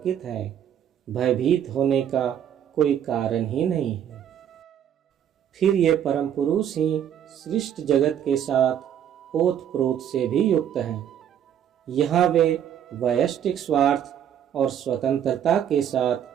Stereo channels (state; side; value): quieter; left; 9.6 dB